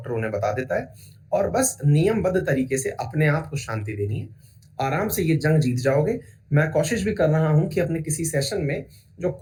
उन्हें बता देता है, और बस नियमबद्ध तरीके से अपने आप को शांति देनी है। आराम से ये जंग जीत जाओगे। मैं कोशिश भी कर रहा हूं कि अपने किसी सेशन में जो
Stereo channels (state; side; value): identical; both; correlation 1.00